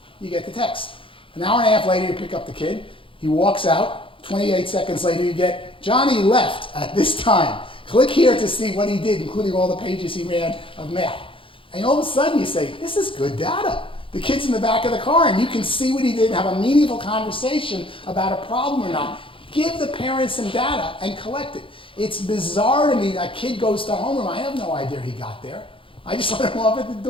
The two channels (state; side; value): late; right; 0.25 ms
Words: You get the text. An hour and a half later, you pick up the kid. He walks out. 28 seconds later, you get, Johnny left at this time. Click here to see what he did, including all the pages he ran of math. And all of a sudden, you say, this is good data. The kid's in the back of the car, and you can see what he did and have a meaningful conversation about a problem or not. Give the parents some data and collect it. It's bizarre to me. A kid goes to homeroom. I have no idea he got there. I just let him off at the